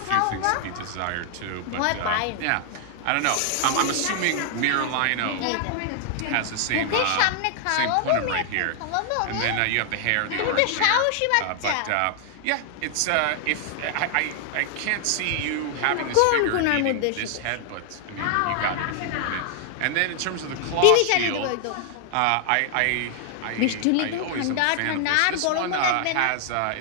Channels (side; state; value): both; different; correlation 0.00